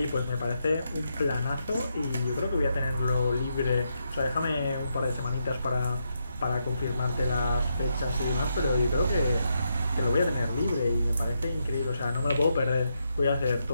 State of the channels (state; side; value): inverted; both; correlation -0.81